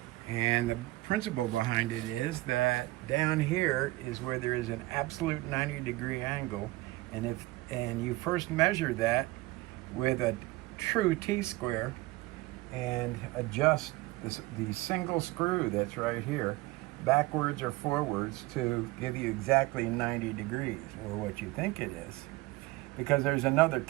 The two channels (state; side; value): quieter; left; 20.2 dB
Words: And the principle behind it is that down here is where there is an absolute 90-degree angle, and you first measure that with a true T-square and adjust the single screw that's right here backwards or forwards to give you exactly 90 degrees, or what you think it is, because there's another